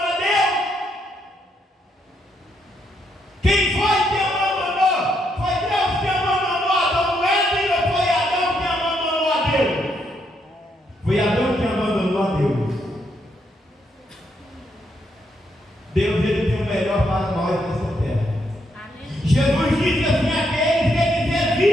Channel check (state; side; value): normal; both; correlation 0.77